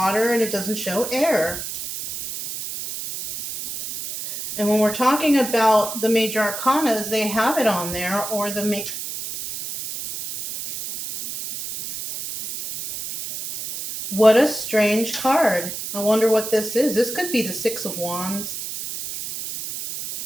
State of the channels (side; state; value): right; noise; hiss, 7 dB below the sound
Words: and it doesn't show air. And when we're talking about the major arcanas, they have it on there, or the What a strange card. I wonder what this is. This could be the 6 of Wands.